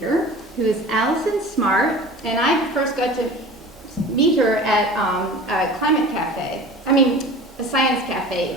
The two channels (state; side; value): normal; both; correlation 0.39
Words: who is Allison Smart, and I first got to meet her at a climate cafe. A science cafe,